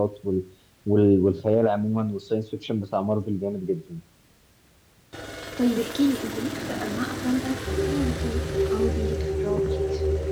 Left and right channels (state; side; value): identical; both; correlation 1.00